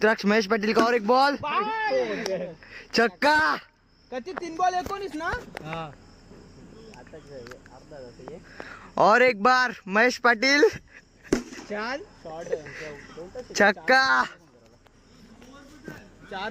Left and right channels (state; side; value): identical; both; correlation 1.00